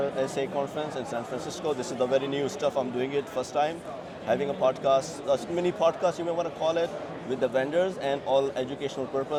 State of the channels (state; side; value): identical; both; correlation 1.00